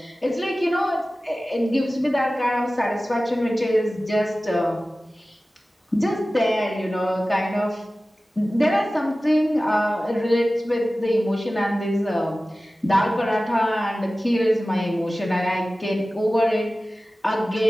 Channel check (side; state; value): both; normal; correlation 0.96